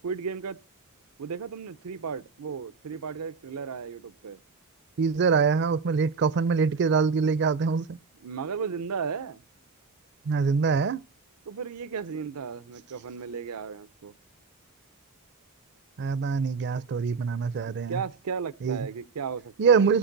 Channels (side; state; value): left; quieter; 5.1 dB